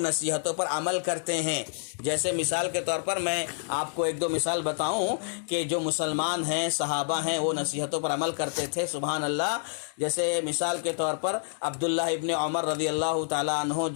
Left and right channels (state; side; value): silent; right; digital silence